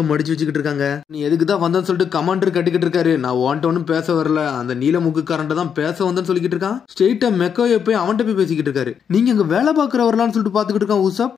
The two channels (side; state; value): right; quieter; 7.5 dB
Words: மடிச்சு வச்சுக்கிட்டு இருக்காங்க. நீ எதுக்கு தான் வந்தேன்னு சொல்லிட்டு கமெண்டர் கட்டிக்கிட்டு இருக்காரு. நான் உன்ட்ட ஒன்னும் பேச வரல, அந்த நீல முக்குக்காரன்ட்ட தான் பேச வந்தேன்னு சொல்லிக்கிட்டு இருக்கான். ஸ்ட்ரெயிட்டா மெக்கோயோ போய் அவன்கிட்ட போய் பேசிக்கிட்டு இருக்காரு. நீங்க அங்க வேலை பாக்குறவரலான்னு சொல்லிட்டு பாத்துக்கிட்டு இருக்கான் உசப்.